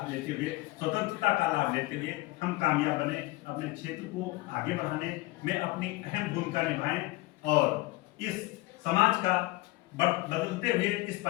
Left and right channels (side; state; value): right; quieter; 20.3 dB